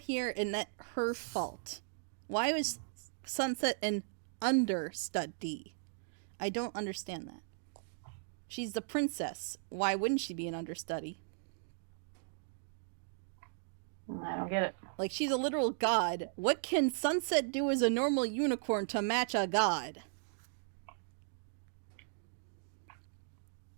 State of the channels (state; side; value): silent; left; digital silence